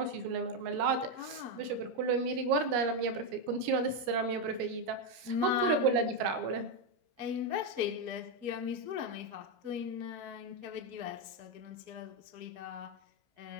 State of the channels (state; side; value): late; left; 17 ms